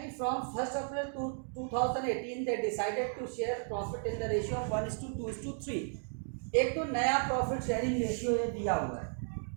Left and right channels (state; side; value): silent; left; 55 dB below the other